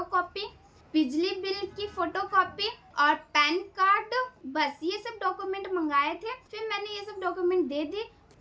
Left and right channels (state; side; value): identical; both; correlation 1.00